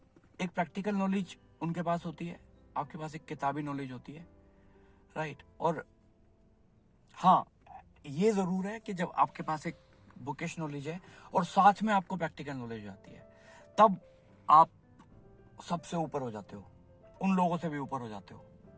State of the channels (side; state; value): both; identical; correlation 1.00